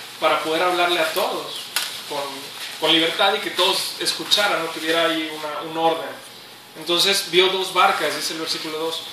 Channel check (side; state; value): both; identical; correlation 1.00